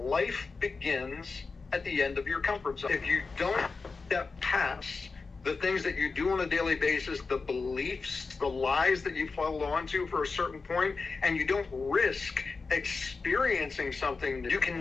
begins at the end of your comfort zone. If you don't step past the things that you do on a daily basis, the beliefs, the lies that you follow onto for a certain point, and you don't risk experiencing something, you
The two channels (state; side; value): quieter; right; 4.4 dB